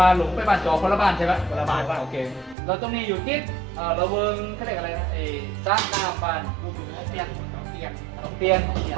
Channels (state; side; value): drops out; left; at 2.6 s